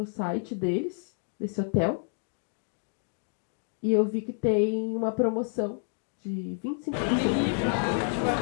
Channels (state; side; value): silent; right; 58 dB below the other